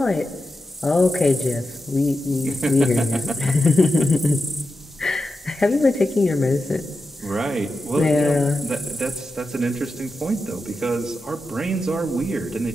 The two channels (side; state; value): both; normal; correlation 0.90